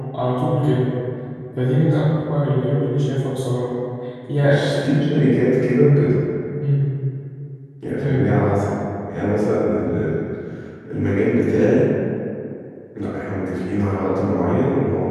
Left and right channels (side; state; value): both; identical; correlation 1.00